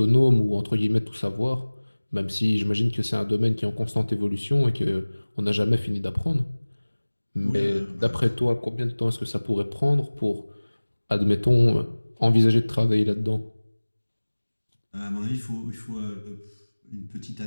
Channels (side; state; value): both; inverted; correlation -1.00